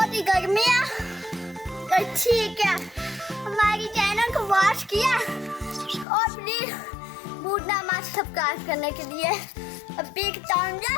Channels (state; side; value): drops out; right; at 6.1 s